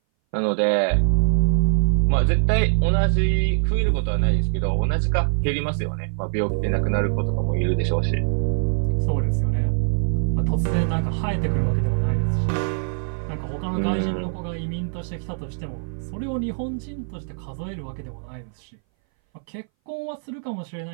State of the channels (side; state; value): left; silent; 60 dB below the other